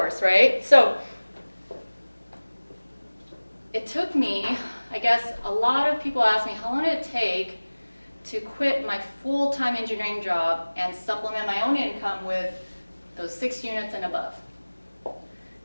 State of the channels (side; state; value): both; inverted; correlation -1.00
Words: right? So it took me, I guess a lot of people ask me, how long did it take to quit my full-time engineering job and supplement my own income with those 6 units and above? It